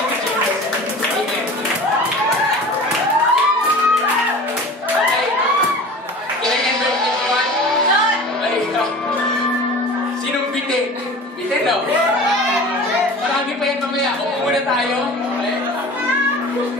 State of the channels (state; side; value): normal; both; correlation 0.38